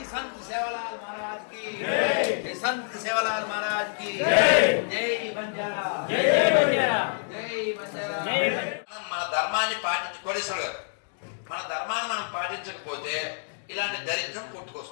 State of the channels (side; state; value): right; silent; digital silence